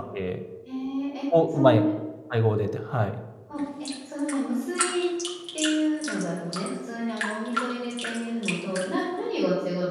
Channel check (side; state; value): both; identical; correlation 1.00